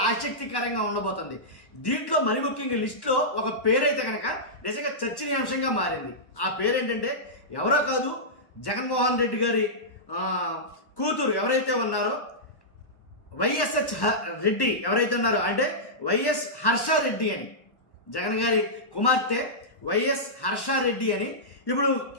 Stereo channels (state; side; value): late; right; 1.1 ms